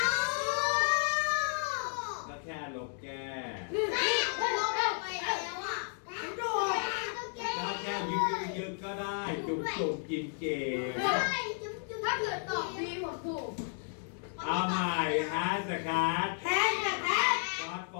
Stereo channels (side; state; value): right; silent; 56 dB below the other